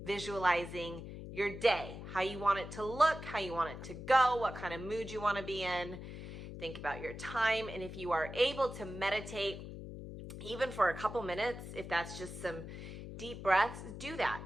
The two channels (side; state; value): left; noise; hum, 10 dB below the sound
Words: visualizing your day, how you want it to look, how you want it to go, what kind of mood you want to be in. Think about your time. And if you are able to meditate, even for a couple minutes, if that's just some deep breaths, do that.